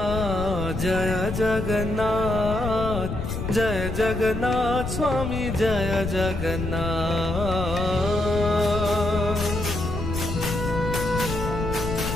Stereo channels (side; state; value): left; noise; rumble, 4 dB below the sound